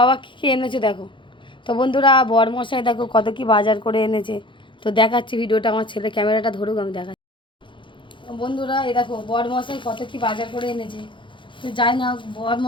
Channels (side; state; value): right; late; 0.24 ms